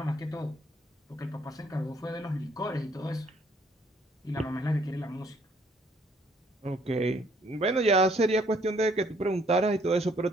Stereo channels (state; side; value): normal; both; correlation 0.64